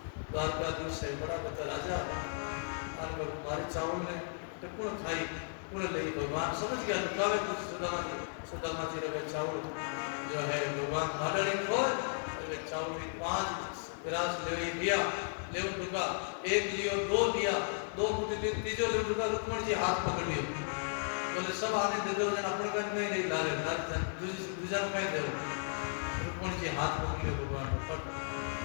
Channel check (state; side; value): silent; right; digital silence